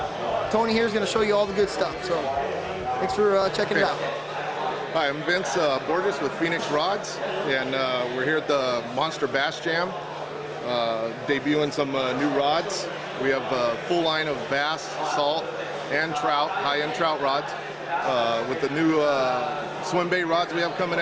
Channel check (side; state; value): both; identical; correlation 1.00